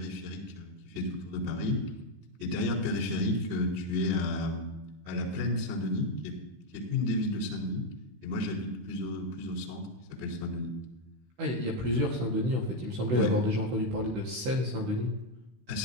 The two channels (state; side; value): late; left; 16 ms